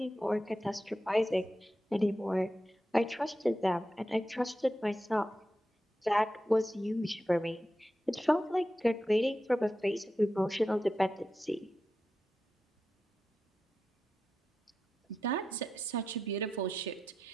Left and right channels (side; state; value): both; normal; correlation 0.90